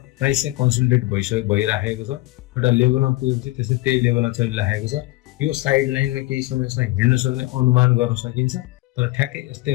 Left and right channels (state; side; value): quieter; right; 19.8 dB